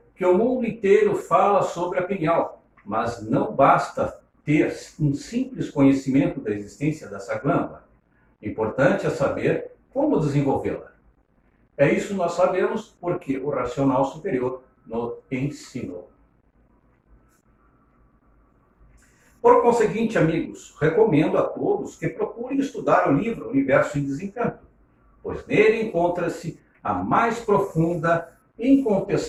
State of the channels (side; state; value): both; identical; correlation 1.00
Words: que o mundo inteiro fala sobre a pineal, mas não basta ter um simples conhecimento da existência dessa glândula. Importante é saber como desenvolvê-la. É isso que nós sabemos porque o racional superior nos ensinou. Por conseguinte, amigos, recomendo a todos que procurem estudar o livro Universo em Desencanto, pois nele encontra-se a mais profunda e